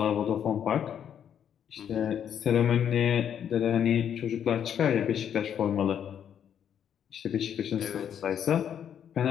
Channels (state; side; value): quieter; right; 8.9 dB